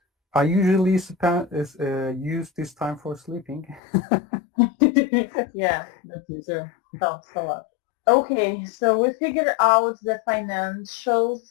I usually use this time for sleeping. Yeah, that's true. Helps a lot. Okay, so we figured out the financial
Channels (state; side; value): drops out; right; at 3.8 s